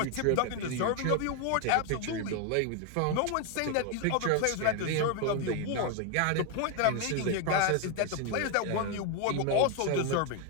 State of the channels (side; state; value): both; different; correlation 0.01